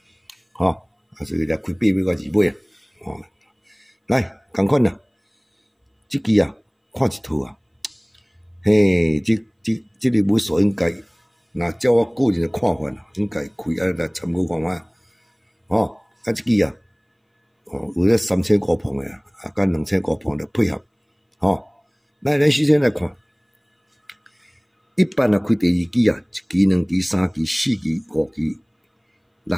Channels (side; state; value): both; identical; correlation 1.00